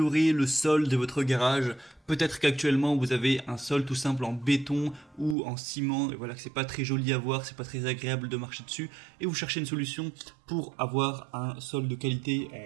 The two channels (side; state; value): left; drops out; at 5.4 s